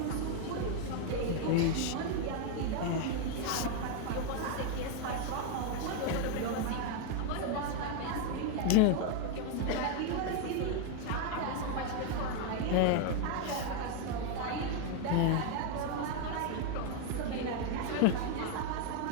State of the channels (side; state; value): both; different; correlation 0.01